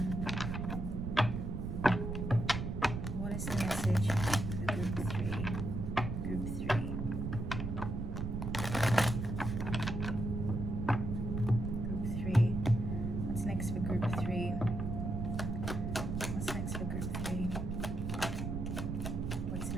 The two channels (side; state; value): right; noise; rumble, 3 dB below the sound